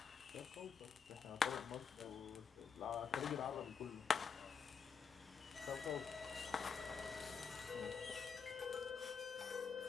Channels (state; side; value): quieter; right; 6.1 dB